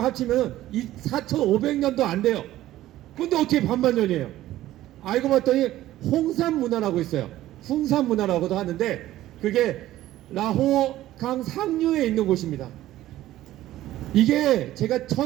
4500년도 안 돼요. 근데 어떻게 반만 년이에요? 알고 봤더니 홍산문화라고 있어요. 흉산문화라고도 하는데 그게 라호강 상류에 있는 곳입니다. 이게 제가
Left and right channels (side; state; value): left; quieter; 14.5 dB